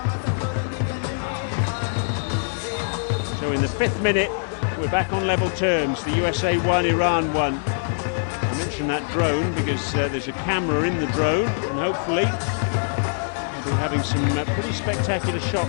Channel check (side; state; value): right; silent; digital silence